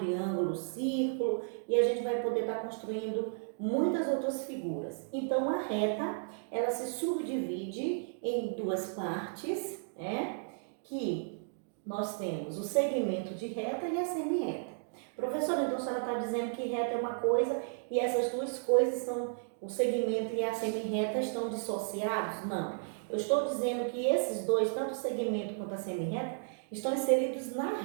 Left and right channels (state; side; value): silent; left; digital silence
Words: o círculo, e a gente vai poder estar construindo muitas outras figuras. Então, a reta, ela se subdivide em duas partes, né? Que nós temos o segmento de reta e a semi-reta. Professora, então a senhora está dizendo que reta é uma coisa e essas duas coisas são, o segmento e a semi-reta estão dissociados? Não. Eu estou dizendo que esses dois, tanto o segmento quanto a semi-reta, estão inseridos na